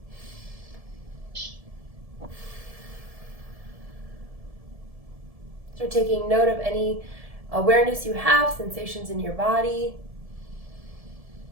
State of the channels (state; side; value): late; left; 1.7 ms